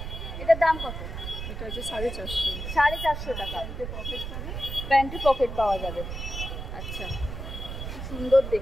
এটার দাম কত? এটা হচ্ছে 450। 450 টাকা। প্যান্টে পকেট পাওয়া যাবে, আচ্ছা, সুন্দর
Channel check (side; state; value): right; noise; rumble, 6 dB below the sound